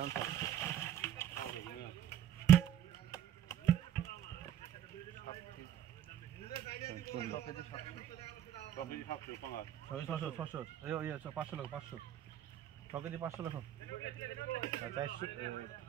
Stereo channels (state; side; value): quieter; left; 10.6 dB